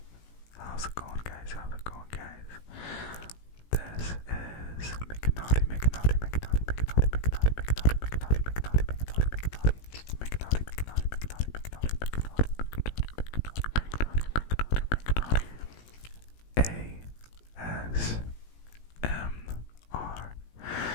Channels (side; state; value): right; late; 18 ms